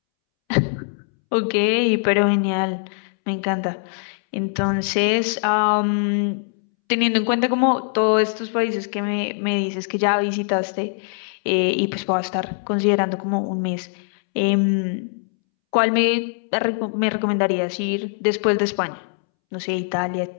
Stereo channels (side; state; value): right; silent; 64 dB below the other